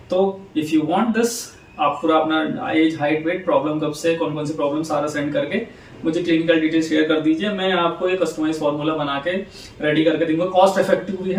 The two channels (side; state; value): both; identical; correlation 1.00